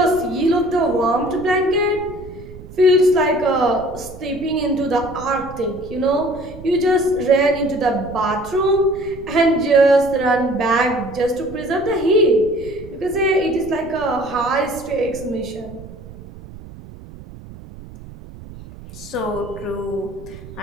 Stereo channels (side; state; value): right; noise; rumble, 16 dB below the sound